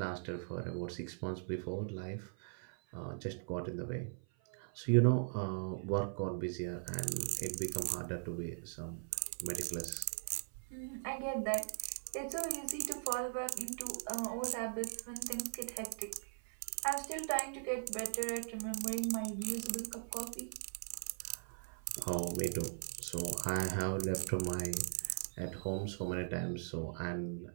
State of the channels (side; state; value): left; silent; 51 dB below the other